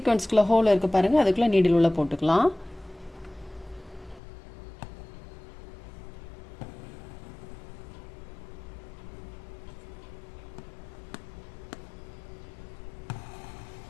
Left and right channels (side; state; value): right; drops out; at 4.2 s